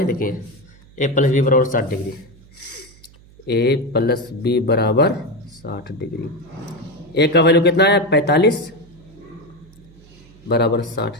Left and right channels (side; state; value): right; noise; hum, 25 dB below the sound